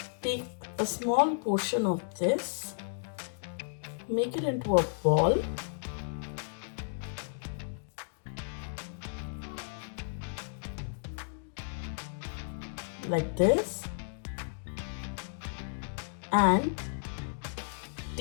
take a small portion of this, make it into a ball, like this, and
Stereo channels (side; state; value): right; silent; digital silence